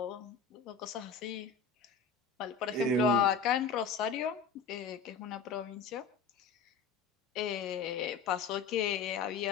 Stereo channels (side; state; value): right; quieter; 5.3 dB